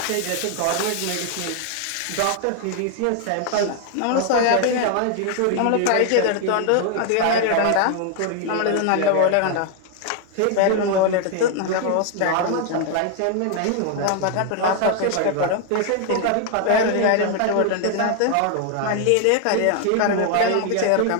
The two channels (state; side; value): different; both; correlation 0.00